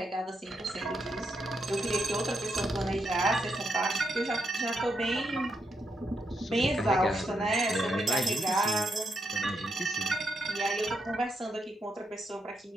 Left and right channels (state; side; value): normal; both; correlation 0.81